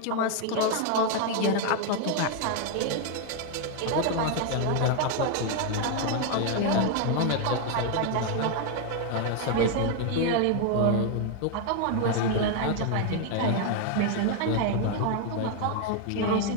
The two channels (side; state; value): both; different; correlation 0.01